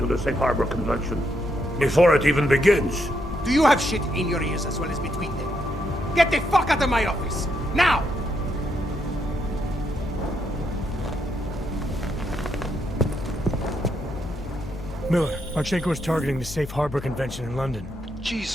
the Safe Harbor Convention before it even begins. Do you have shit in your ears as well as between them? Get the fuck out of my office! Now! Miller, Marchenko is targeting the Safe Harbor Convention in London.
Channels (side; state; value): both; normal; correlation 0.78